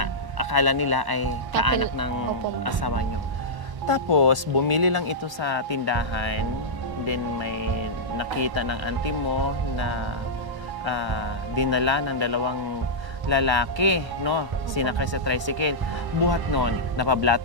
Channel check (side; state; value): left; late; 1.0 ms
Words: akala nila ay kaanak ng Opo, ma'am. asawa nyo. Tapos, bumili lang ito sa tindahan. Then, may nakita ng auntie mo na dinala ng dalawang lalaki, no? Sinakay sa tricycle. Buhat nun,